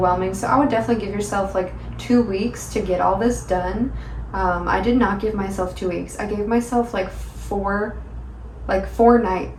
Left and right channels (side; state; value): both; identical; correlation 1.00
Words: So I would definitely give yourself like 2 weeks to get all this done. I did not give myself 2 weeks. I gave myself like 4